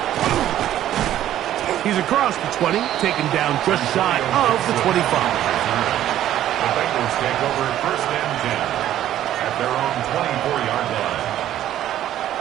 He's across the 20, taken down just shy of the 25. The Bengals take over first and 10 at their own 24-yard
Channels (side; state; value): left; quieter; 12.2 dB